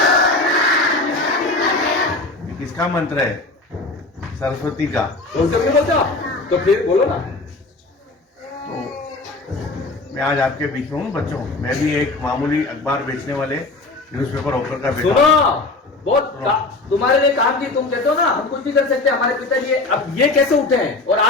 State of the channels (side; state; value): right; quieter; 3.2 dB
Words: किसका मंत्र है? सरस्वती का। बोलते तो फिर बोलो ना। तो मैं आज आपके बीच में हूँ बच्चों। मैं भी एक मामूली अखबार बेचने वाले न्यूज़पेपर ऑफर का बेटा। सुनो, बहुत तुम्हारे लिए काम की। तुम कहते हो ना हम कुछ भी कर सकते हैं, हमारे पिताजी अब ये कैसे उठे हैं और